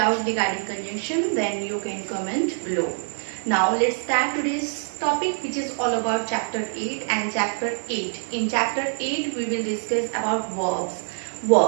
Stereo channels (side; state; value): left; silent; 62 dB below the other